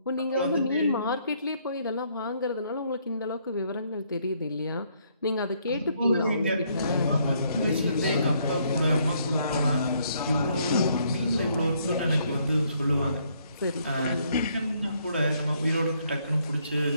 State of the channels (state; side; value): inverted; both; correlation -0.70